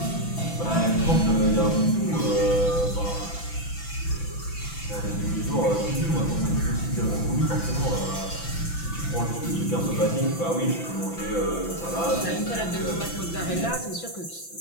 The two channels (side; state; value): right; late; 6.0 ms